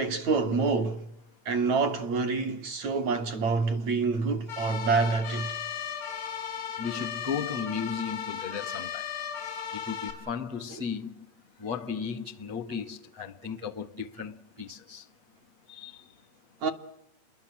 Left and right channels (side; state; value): left; late; 8.7 ms